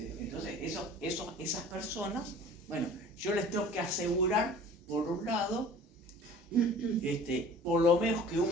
esas personas, bueno, yo les tengo que asegurar, por un lado, por lo menos que un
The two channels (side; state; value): both; normal; correlation 0.45